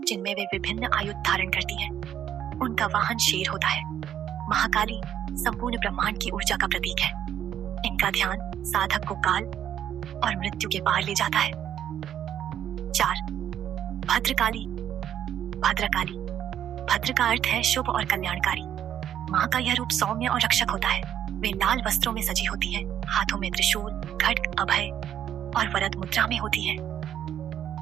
जिनमें वे विभिन्न आयुध धारण करती हैं। उनका वाहन शेर होता है। महाकाली संपूर्ण ब्रह्मांड की ऊर्जा का प्रतीक है। इनका ध्यान साधक को काल और मृत्यु के पार ले जाता है। 4. भद्रकाली। भद्रकाली, भद्र का अर्थ है शुभ और कल्याणकारी। माँ का यह रूप सौम्य और रक्षक होता है। वे लाल वस्त्रों में सजी होती हैं, हाथों में त्रिशूल, खड्ग, अभय और वरद मुद्रा में होती हैं।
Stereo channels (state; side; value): quieter; left; 10.2 dB